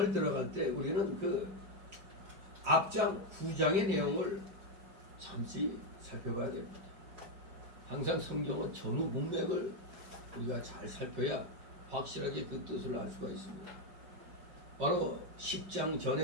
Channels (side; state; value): left; late; 5.2 ms